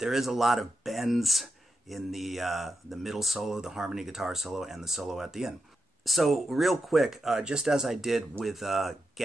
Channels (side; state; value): both; normal; correlation 0.87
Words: is a lot of bends in the middle solo, the harmony guitar solo, and the solo at the end. So real quick, just as I did with